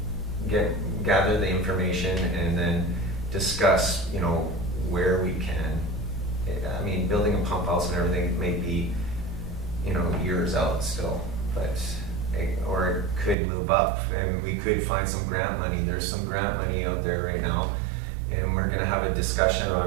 gather the information, and then discuss, where we can. I mean, building a pump house and everything may be, years out still, but or it could move up, and we could find some grant money. There's some grant money out there right now, and we're going to have a discussion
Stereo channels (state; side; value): drops out; left; at 13.4 s